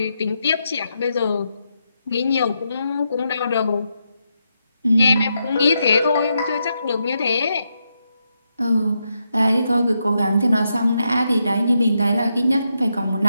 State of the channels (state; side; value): inverted; both; correlation -0.82